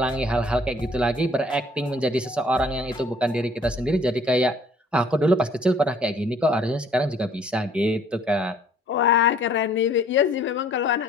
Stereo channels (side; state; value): both; normal; correlation 0.57